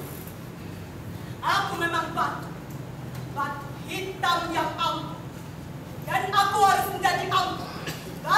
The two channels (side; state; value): both; identical; correlation 1.00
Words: Aku memang batu. Batu hitam yang angkuh. Dan aku harus menjadi angkuh.